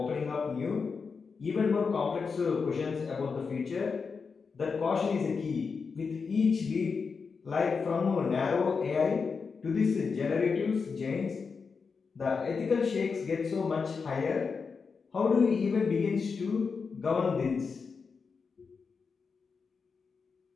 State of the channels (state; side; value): quieter; right; 5.2 dB